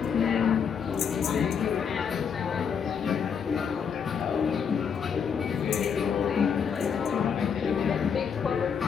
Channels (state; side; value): quieter; right; 6.9 dB